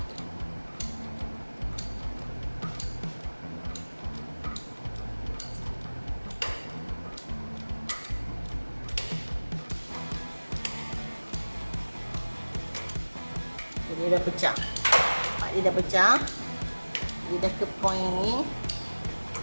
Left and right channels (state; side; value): inverted; both; correlation -1.00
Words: Dia dah pecah. Dia dah pecah. Dia dah ke point ni.